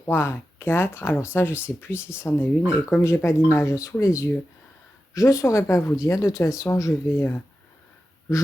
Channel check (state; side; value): normal; both; correlation 0.92